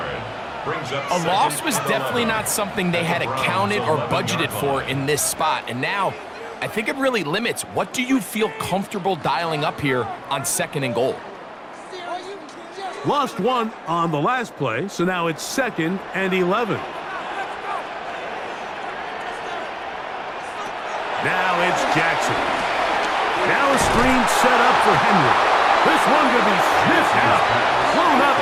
A loss was definitely not something they had accounted or budgeted for in this spot. And now, I think it really limits what do you feel comfortable dialing up here on 2nd and goal. Lost one on the last play, so now it's 2nd and 11. Now it's Jackson. Now a screen set up for Henry. This one going to be sniffed out, thrown up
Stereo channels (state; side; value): identical; both; correlation 1.00